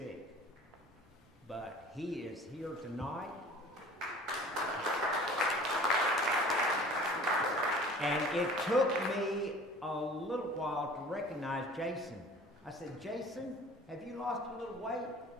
But he is here tonight. And it took me a little while to recognize Jason. I said, Jason, have you lost a little weight?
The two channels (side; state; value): both; normal; correlation 0.46